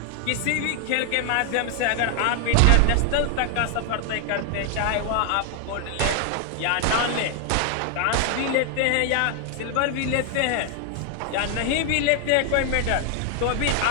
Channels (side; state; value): both; different; correlation 0.00